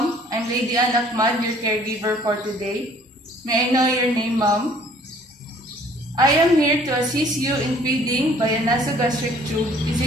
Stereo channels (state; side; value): normal; both; correlation 0.56